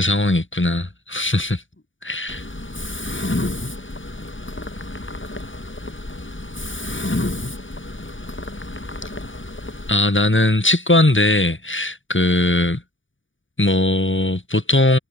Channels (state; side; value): late; right; 0.56 ms